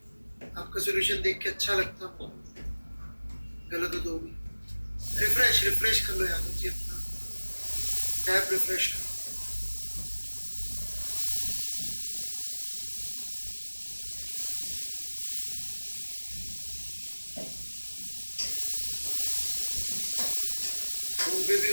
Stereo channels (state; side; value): inverted; both; correlation -1.00